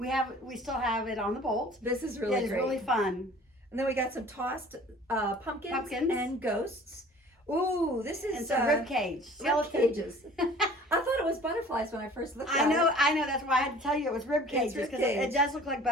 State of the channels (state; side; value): normal; both; correlation 0.48